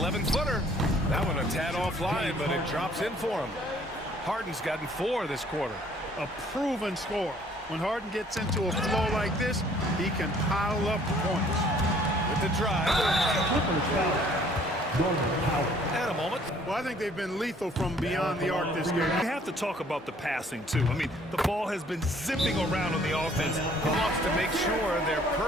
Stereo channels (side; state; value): both; normal; correlation 0.59